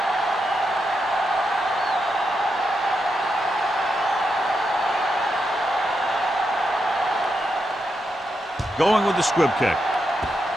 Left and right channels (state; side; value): normal; both; correlation 0.84